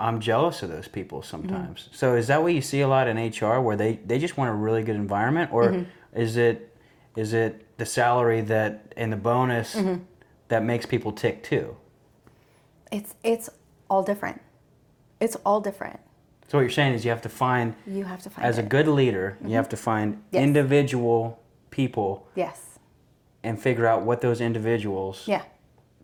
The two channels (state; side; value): identical; both; correlation 1.00